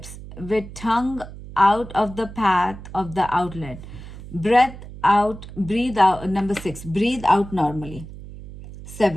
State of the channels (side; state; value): right; noise; hum, 14 dB below the sound